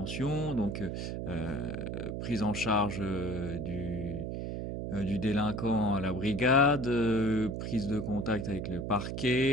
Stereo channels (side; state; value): right; noise; hum, 4 dB below the sound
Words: donc prise en charge du délinquant à la brigade, prise de contact avec le